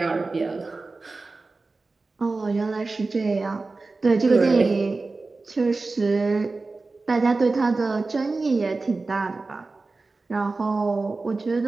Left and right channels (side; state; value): left; quieter; 3.6 dB